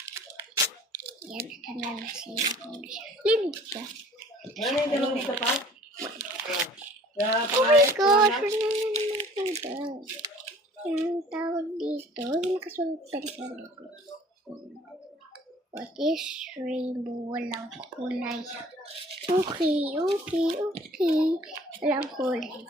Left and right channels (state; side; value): normal; both; correlation 0.51